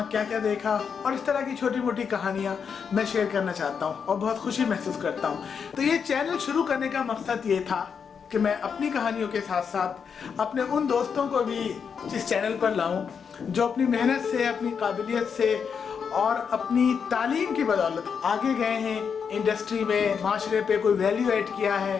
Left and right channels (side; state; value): right; quieter; 6.6 dB